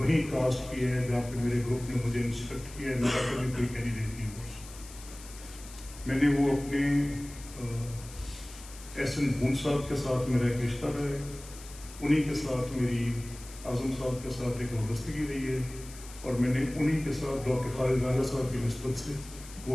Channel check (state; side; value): noise; left; hiss, 17 dB below the sound